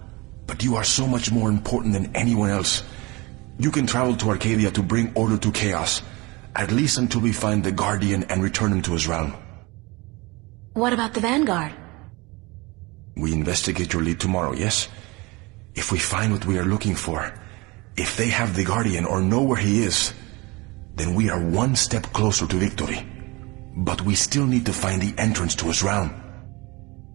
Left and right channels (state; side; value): quieter; left; 24.6 dB